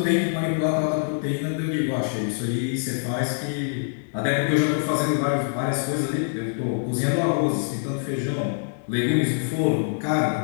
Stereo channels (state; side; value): silent; right; 62 dB below the other